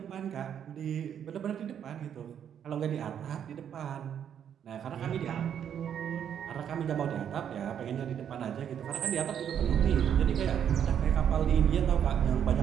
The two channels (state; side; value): quieter; left; 8.9 dB